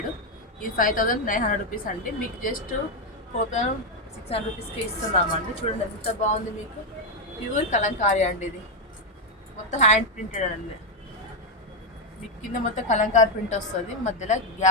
ఇది 5900 రూపీస్ అండి. మీకు జస్ట్ 4600 రూపీస్కి ఇస్తున్నామండి. చూడండి ఎంత బాగుంది, మీకు ప్యూర్ కలంకారీ అండి. ఇది మొత్తం హ్యాండ్ ప్రింటెడ్ అండి. మీకు కింద మొత్తం కలంకారీ ప్రింట్ వస్తుంది, మధ్యలో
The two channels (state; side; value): normal; both; correlation 0.05